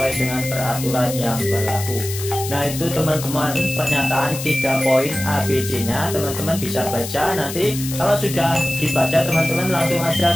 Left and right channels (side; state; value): left; noise; hiss, 8 dB below the sound